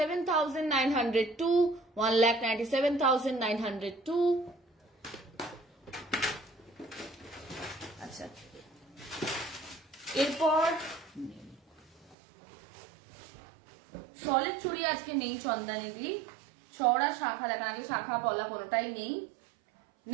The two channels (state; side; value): drops out; left; at 12.2 s